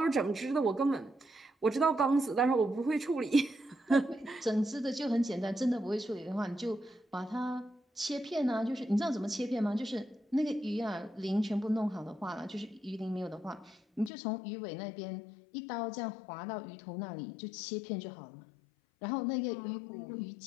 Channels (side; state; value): right; drops out; at 14.1 s